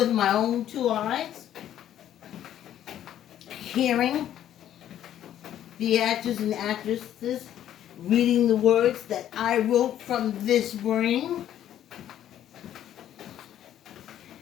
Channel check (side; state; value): right; quieter; 11.3 dB